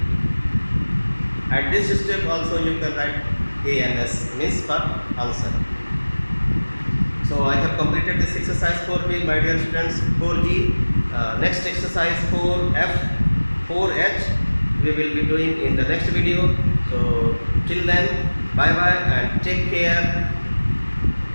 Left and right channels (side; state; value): both; inverted; correlation -1.00